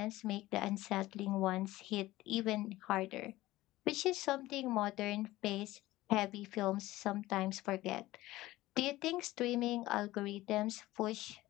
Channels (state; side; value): quieter; right; 17.4 dB